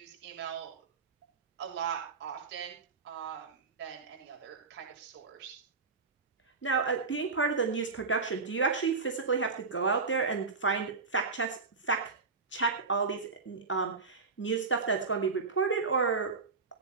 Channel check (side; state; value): left; quieter; 4.6 dB